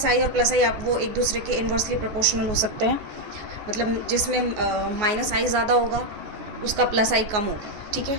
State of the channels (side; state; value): left; late; 14 ms